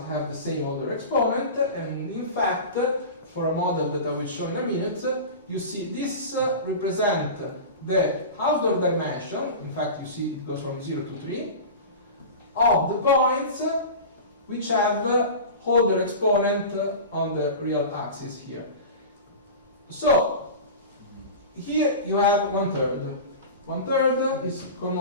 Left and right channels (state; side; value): inverted; both; correlation -0.31